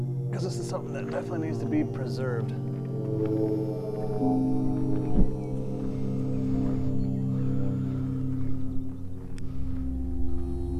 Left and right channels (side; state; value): both; identical; correlation 1.00